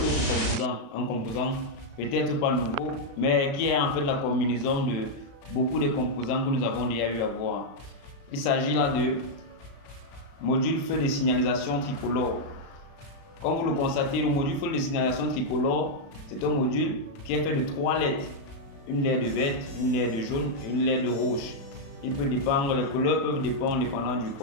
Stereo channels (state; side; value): late; right; 36 ms